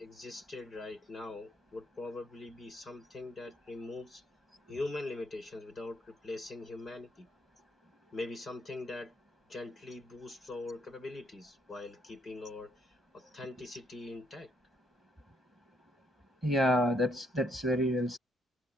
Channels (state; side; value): normal; both; correlation 0.71